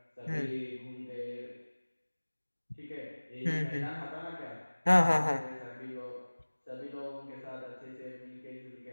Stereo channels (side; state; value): both; inverted; correlation -1.00